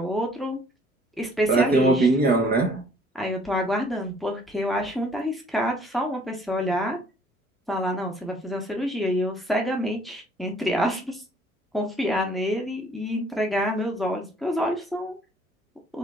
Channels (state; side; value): normal; both; correlation 0.59